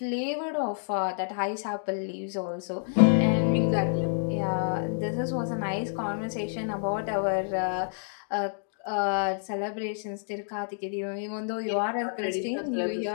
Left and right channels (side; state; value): right; silent; digital silence